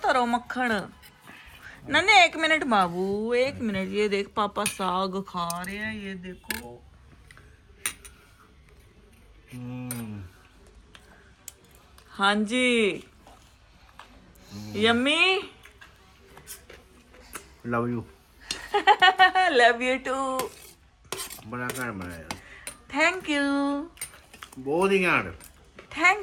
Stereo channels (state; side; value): identical; both; correlation 1.00